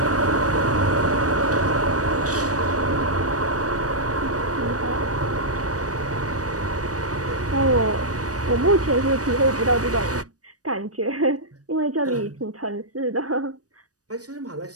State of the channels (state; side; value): late; left; 0.67 ms